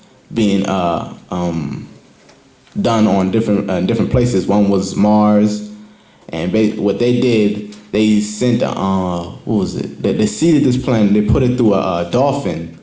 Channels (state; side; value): identical; both; correlation 1.00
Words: being done on different places. One was Mars, and what they did, they sent what was it? They seeded this plant. They put it through a dolphin,